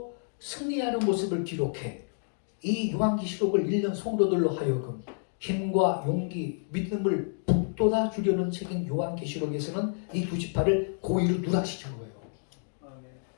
승리하는 모습을 기록해 이 요한계시록을 읽는 성도들로 하여금 힘과 용기, 믿음을 북돋아 주려는 책인 요한계시록에서는 이 두 지파를 고의로 누락시킨 거예요.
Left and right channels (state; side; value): silent; right; digital silence